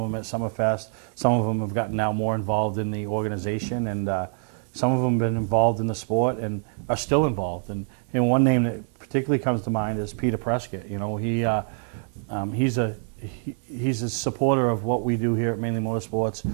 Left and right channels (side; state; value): left; silent; 60 dB below the other